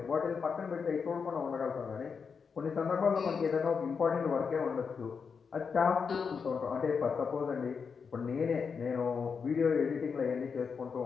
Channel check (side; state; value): right; quieter; 5.8 dB